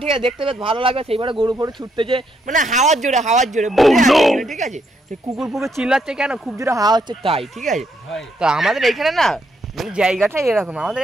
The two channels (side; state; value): both; normal; correlation 0.75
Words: ঠিক আছে, দেখতে বেশ ভালো লাগবে। সেইবারে গরু ফরু ছুটতেছে, মানে হাওয়ার জোরে ঠিক আছে। সেই কুকুর ফুকুর চিল্লাচ্ছে কেন, খুব জোরে হাওয়া হচ্ছে তাই, ঠিক আছে। তো আমাদের এইখানে না মানে জায়গাটা এরকম, আমাদের